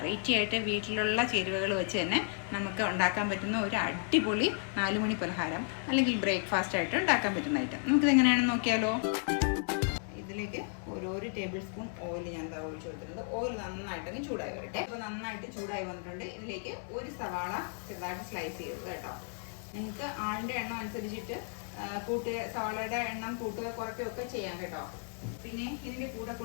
ആയിട്ട് വീട്ടിലുള്ള ചേരുവകൾ വെച്ച് തന്നെ നമുക്ക് ഉണ്ടാക്കാൻ പറ്റുന്ന ഒരു അടിപൊളി 4 മണി പലഹാരം അല്ലെങ്കിൽ ബ്രേക്ക്ഫാസ്റ്റ് ആയിട്ട് ഉണ്ടാക്കാൻ പറ്റുന്ന ഐറ്റം നമുക്കിത് എങ്ങനെയാണെന്ന് നോക്കിയാലോ. ഇതിലേക്ക് ഒരു ടേബിൾ സ്പൂൺ ഓയിൽ ഞാൻ ഒഴിച്ചു കൊടുത്തിട്ടുണ്ട്. ഓയിൽ നന്നായിട്ടൊന്ന് ചൂടായി വരട്ടെ. അപ്പോൾ നന്നായിട്ട് ചൂടായി വന്നിട്ടുണ്ട്. ഇതിലേക്ക് ഒരു സവാള ചെറുതായിട്ട് സ്ലൈസ് ചെയ്തത് കേട്ടോ. നിങ്ങൾക്ക് ആളിൻ്റെ എണ്ണം അനുസരിച്ചിട്ട് സവാളയുടെ എണ്ണം കൂട്ടുക കുറയ്ക്കുകയൊക്കെ ചെയ്യാം കേട്ടോ. പിന്നെ ഇതിൻ്റെ കൂടെ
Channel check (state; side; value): silent; right; 55 dB below the other